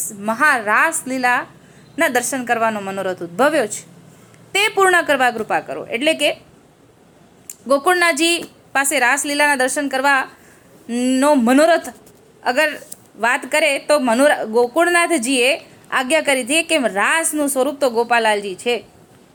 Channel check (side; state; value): both; identical; correlation 1.00